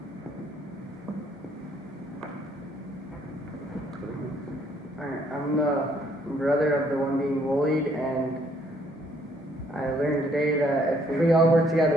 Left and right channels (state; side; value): normal; both; correlation 0.66